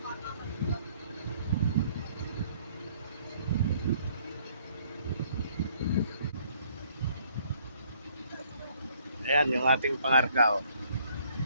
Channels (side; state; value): both; inverted; correlation -0.63